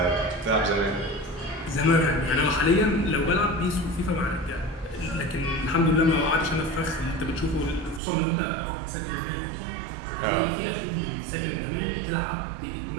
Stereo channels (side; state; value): left; drops out; at 8.0 s